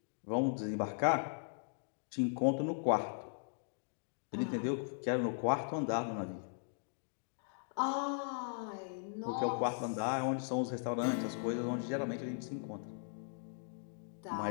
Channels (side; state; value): right; silent; digital silence